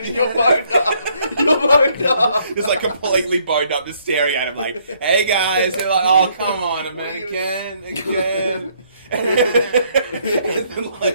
and you're boned up. You're boned up. Just like completely boned up, just staring at him like, hey guys. They're like, oh, come on, man, again. And then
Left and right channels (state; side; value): inverted; both; correlation -0.68